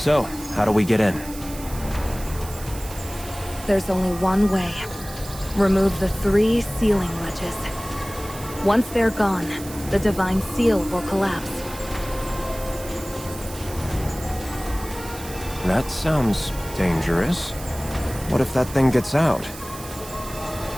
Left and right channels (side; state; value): right; noise; hiss, 14 dB below the sound